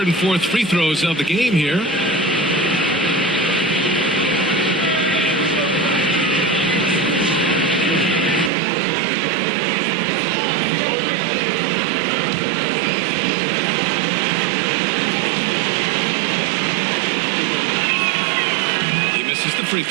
and 4th free throws of the game here. He misses the free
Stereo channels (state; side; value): drops out; left; at 8.5 s